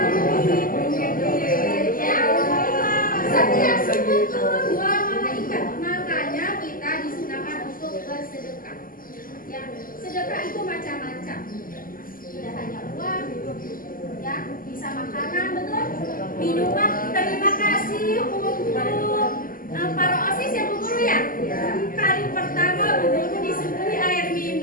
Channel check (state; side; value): late; right; 0.41 ms